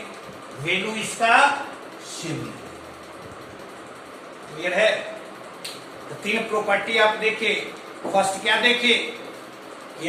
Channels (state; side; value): identical; both; correlation 1.00